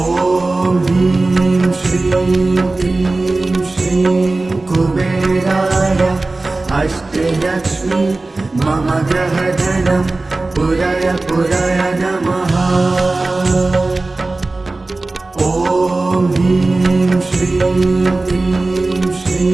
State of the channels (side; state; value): left; quieter; 3.2 dB